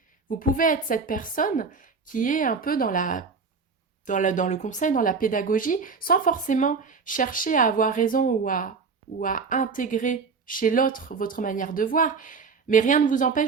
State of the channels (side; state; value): left; quieter; 5.0 dB